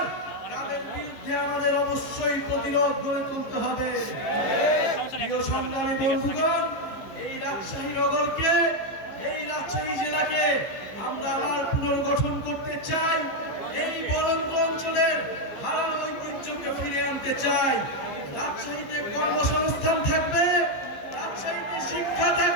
তাদের বিরুদ্ধে আমাদের অবশ্যই প্রতিরোধ গড়ে তুলতে হবে। প্রিয় সংগ্রামী বন্ধুগণ, এই রাজশাহী নগরকে, এই রাজশাহী জেলাকে আমরা আবার পুনর্গঠন করতে চাই। এই বরেন্দ্র অঞ্চলের হারানো ঐতিহ্যকে ফিরে আনতে চাই। রাজশাহীতে কর্মসংস্থান থাকবে, রাজশাহীতে শিক্ষা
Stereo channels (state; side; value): late; right; 15 ms